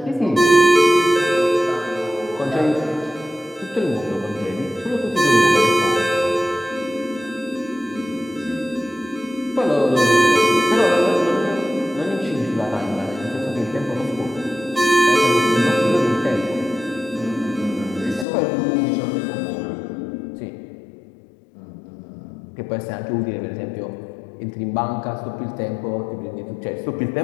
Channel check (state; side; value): drops out; right; at 18.2 s